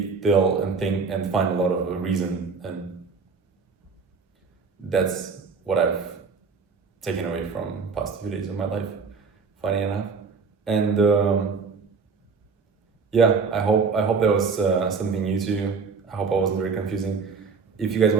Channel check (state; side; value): quieter; left; 5.0 dB